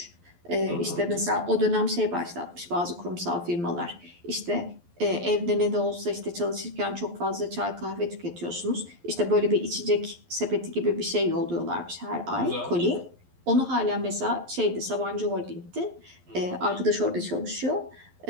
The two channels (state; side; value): late; left; 11 ms